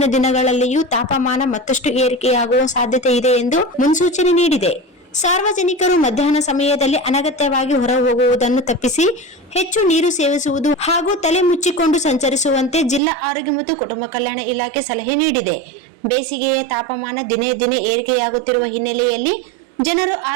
ದಿನಗಳಲ್ಲಿಯೂ ತಾಪಮಾನ ಮತ್ತಷ್ಟು ಏರಿಕೆಯಾಗುವ ಸಾಧ್ಯತೆ ಇದೆ ಎಂದು ಮುನ್ಸೂಚನೆ ನೀಡಿದೆ. ಸಾರ್ವಜನಿಕರು ಮಧ್ಯಾಹ್ನ ಸಮಯದಲ್ಲಿ ಅನಗತ್ಯವಾಗಿ ಹೊರ ಹೋಗುವುದನ್ನು ತಪ್ಪಿಸಿ ಹೆಚ್ಚು ನೀರು ಸೇವಿಸುವುದು ಹಾಗೂ ತಲೆ ಮುಚ್ಚಿಕೊಂಡು ಸಂಚರಿಸುವಂತೆ ಜಿಲ್ಲಾ ಆರೋಗ್ಯ ಮತ್ತು ಕುಟುಂಬ ಕಲ್ಯಾಣ ಇಲಾಖೆ ಸಲಹೆ ನೀಡಿದೆ. ಬೇಸಿಗೆಯ ತಾಪಮಾನ ದಿನೇ ದಿನೇ ಏರಿಕೆಯಾಗುತ್ತಿರುವ ಹಿನ್ನೆಲೆಯಲ್ಲಿ ಜನರು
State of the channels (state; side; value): drops out; left; at 13.0 s